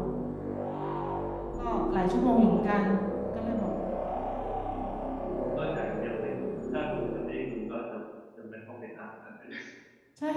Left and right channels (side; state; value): both; identical; correlation 1.00